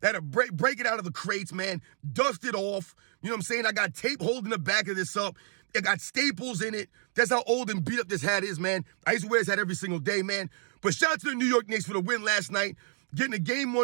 I had to break it out of the crates, man. Dust it off. You know what I'm saying? I got tape holding the back of this up. It got staples in it. That's how old and beat up this hat is, man. I used to wear this hat every single day, man. But shout out to the New York Knicks for the win last night, getting a Game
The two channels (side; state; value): left; silent; 58 dB below the other